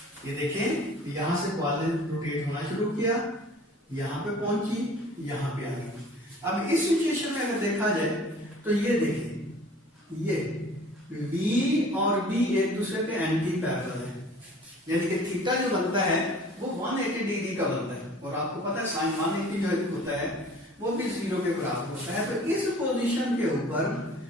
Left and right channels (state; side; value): normal; both; correlation 0.48